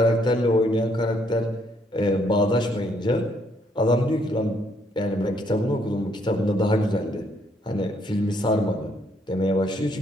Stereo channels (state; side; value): normal; both; correlation 0.70